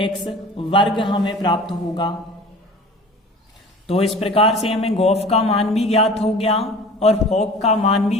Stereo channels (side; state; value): both; normal; correlation 0.42